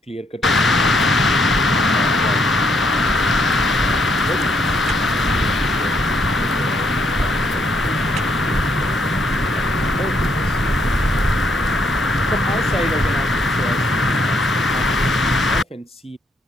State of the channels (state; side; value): normal; both; correlation 0.72